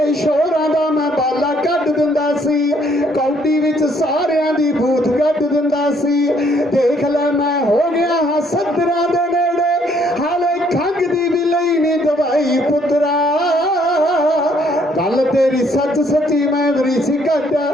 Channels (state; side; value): normal; both; correlation 0.66